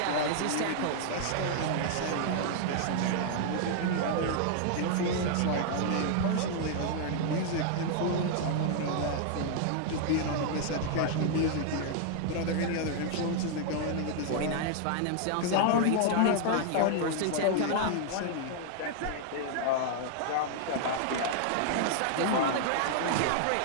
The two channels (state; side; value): different; both; correlation 0.00